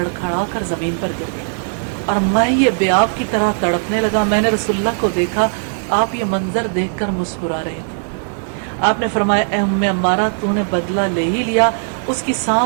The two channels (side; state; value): left; silent; digital silence